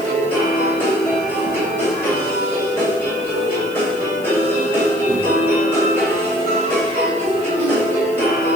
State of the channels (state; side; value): noise; left; hiss, 21 dB below the sound